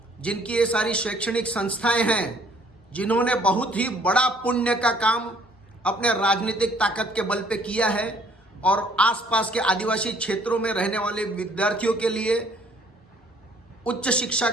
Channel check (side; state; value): both; normal; correlation 0.60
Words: जिनकी ये सारी शैक्षणिक संस्थाएं हैं, जिन्होंने बहुत ही बड़ा पुण्य का काम अपने राजनीतिक ताकत के बल पे किया है और आसपास के आदिवासी क्षेत्रों में रहने वाले विद्यार्थियों के लिए उच्च शिक्षा